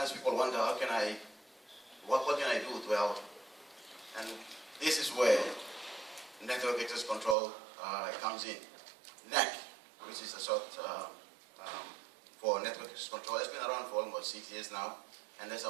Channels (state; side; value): drops out; left; at 7.4 s